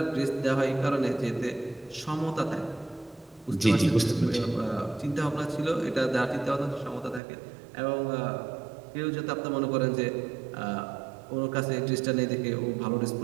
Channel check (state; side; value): drops out; left; at 7.2 s